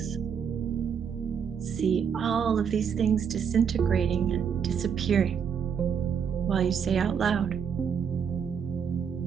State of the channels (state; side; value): quieter; left; 7.2 dB